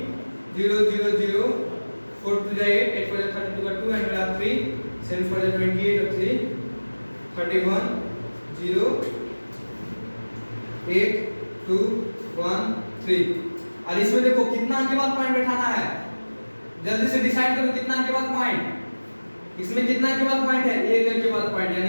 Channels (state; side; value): inverted; both; correlation -1.00